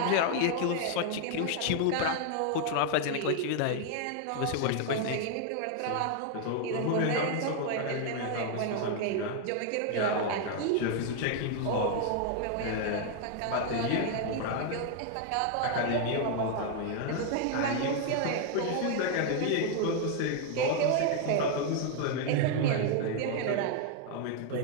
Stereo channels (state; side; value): different; both; correlation 0.01